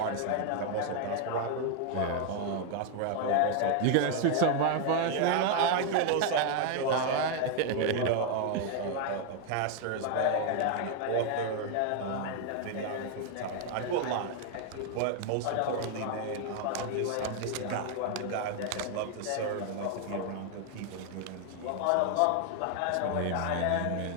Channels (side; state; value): both; different; correlation 0.01